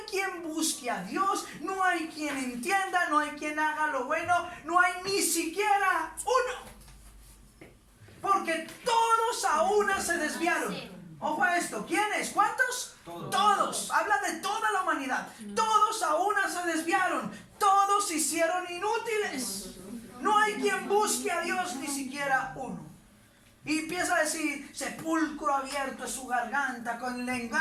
quien busque a Dios, no hay quien entienda, no hay quien haga lo bueno, no hay ni siquiera uno. Porque todos a una se desviaron. Ojo a esto, ¿quiénes? ¿Cuántos? Todos. Habla de toda la humanidad. Todos a una se desviaron. Todos se hicieron inútiles. No hay quien busque a Dios, ni siquiera uno. Y empieza a decir, sepulcro abierto es su garganta, con le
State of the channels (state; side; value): identical; both; correlation 1.00